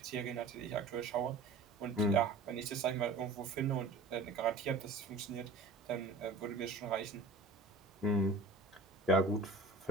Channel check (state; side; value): quieter; left; 3.3 dB